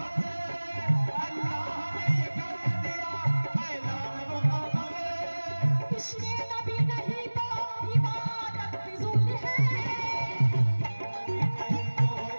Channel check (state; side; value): inverted; both; correlation -1.00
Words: इश्क़े नबी नहीं तो इबादत फिजूल है।